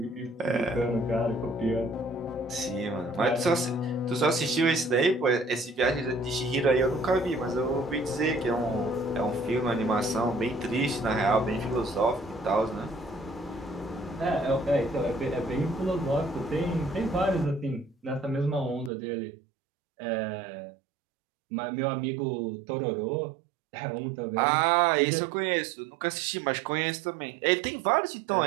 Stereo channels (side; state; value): left; drops out; at 18.9 s